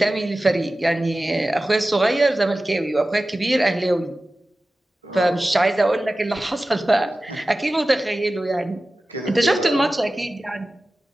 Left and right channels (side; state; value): both; normal; correlation 0.95